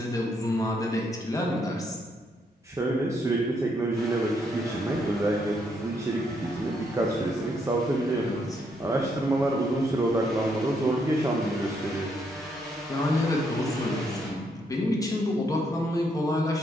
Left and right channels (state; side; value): normal; both; correlation 0.74